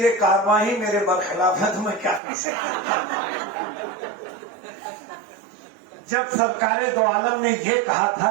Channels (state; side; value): drops out; left; at 2.2 s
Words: कारवां ही मेरे बरखिलाफ है तो मैं क्या कर सकता। जब सरकारे दो आलम ने यह कहा